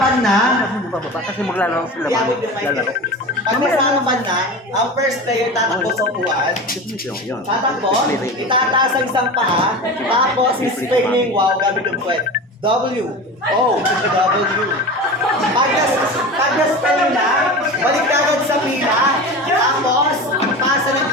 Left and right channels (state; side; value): normal; both; correlation 0.30